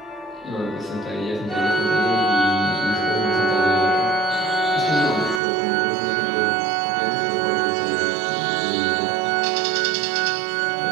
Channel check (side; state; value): left; drops out; at 5.4 s